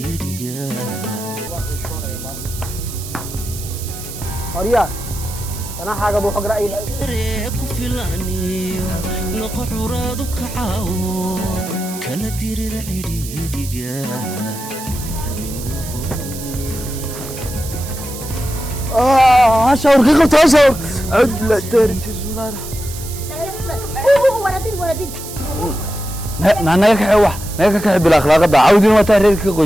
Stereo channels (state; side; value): noise; right; hiss, 12 dB below the sound